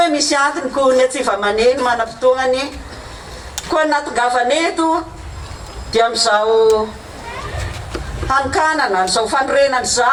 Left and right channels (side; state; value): both; identical; correlation 1.00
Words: misy antony ko ny atsiva maneno manam-potoagnany koa natongavaneto dia amin'izao hanokanana n'izao fanorenana